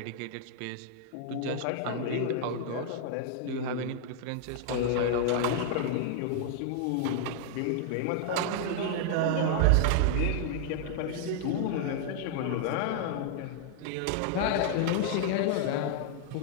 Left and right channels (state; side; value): different; both; correlation -0.01